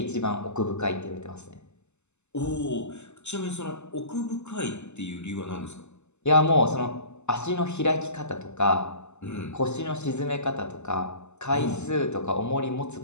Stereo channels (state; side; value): late; right; 0.83 ms